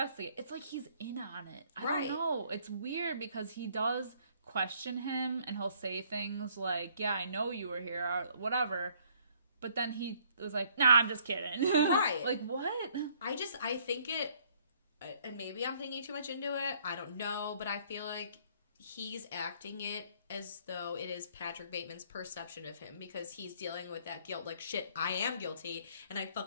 It's like he's in on it. I don't know. It's weird because he does question him and he'll say things like, yeah, I know you were here, or whatever. But then he was like, nah, I'm just kidding. Right. Like, what? I think it, and maybe I'm thinking too much into it. I don't know, but I feel like he's acting it as though it is Patrick Bateman's perception of him because he's dealing with that guilt. Like, shit, I am guilty and I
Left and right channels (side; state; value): both; inverted; correlation -0.62